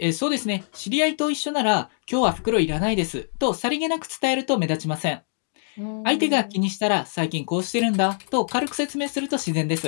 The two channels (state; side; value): silent; right; digital silence